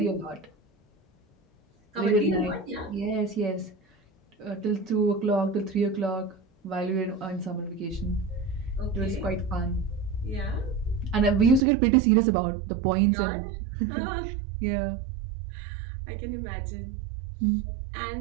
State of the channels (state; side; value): drops out; left; at 11.6 s